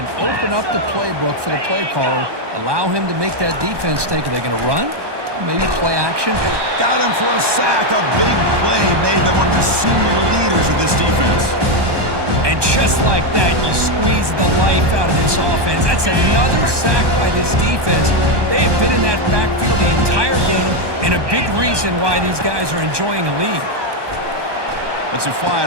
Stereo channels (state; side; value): late; left; 1.2 ms